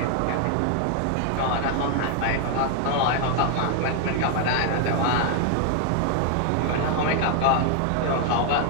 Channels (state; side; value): different; both; correlation 0.00